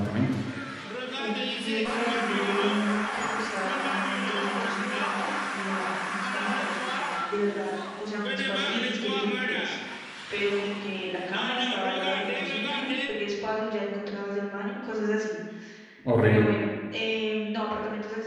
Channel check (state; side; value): identical; both; correlation 1.00